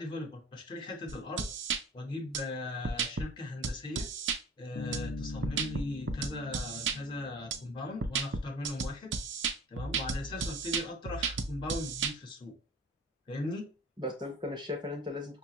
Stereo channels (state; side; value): normal; both; correlation 0.42